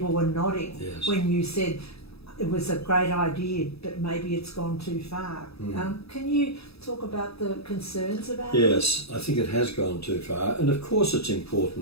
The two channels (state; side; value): late; right; 0.78 ms